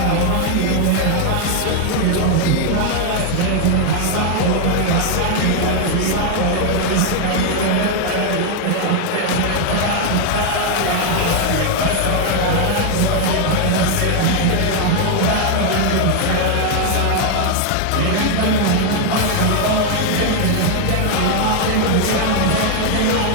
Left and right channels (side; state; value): both; different; correlation 0.00